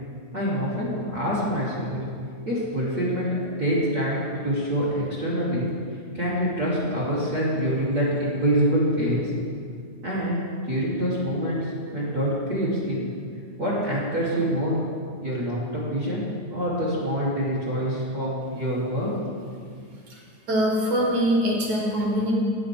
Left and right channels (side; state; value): left; late; 9.3 ms